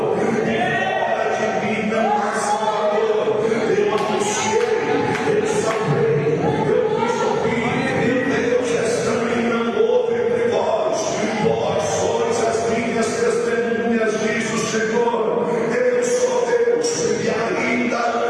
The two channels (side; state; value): both; identical; correlation 1.00